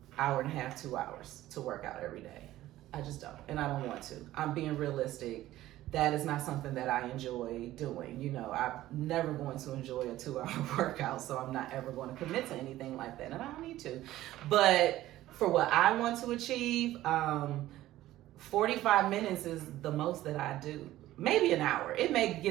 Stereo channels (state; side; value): quieter; left; 15.0 dB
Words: hour and a half, 2 hours to work out every day. I just don't, and I don't want to. I'm being realistic. That is not something that I enjoy doing. I'm never going to enjoy a 2-hour workout, so I'm not ever going to commit to anything like that, and I don't need to. But for what I want to achieve, 45 minutes is the most that I do. Maybe an hour. It may